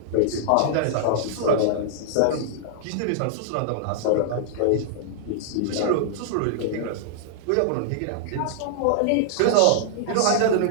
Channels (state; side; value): different; both; correlation -0.01